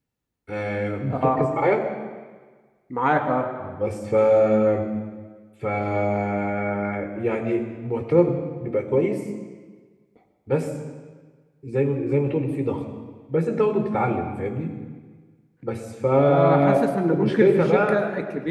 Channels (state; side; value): identical; both; correlation 1.00